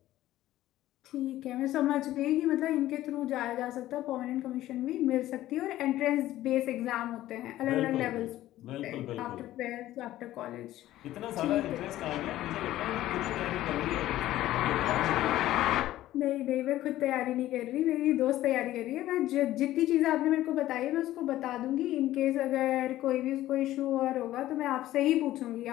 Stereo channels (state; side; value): quieter; right; 14.6 dB